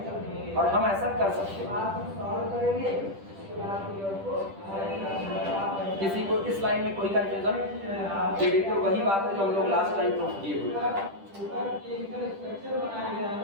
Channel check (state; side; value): late; left; 10 ms